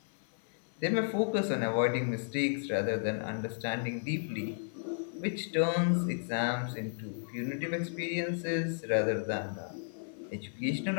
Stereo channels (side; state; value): right; silent; 55 dB below the other